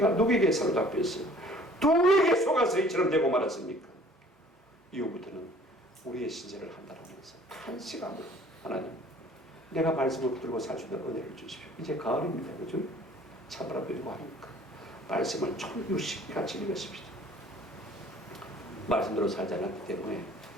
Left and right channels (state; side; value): normal; both; correlation 0.52